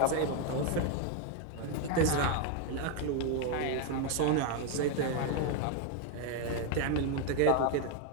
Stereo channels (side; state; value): both; different; correlation 0.01